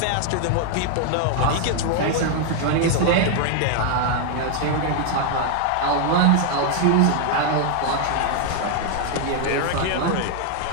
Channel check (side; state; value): both; different; correlation 0.00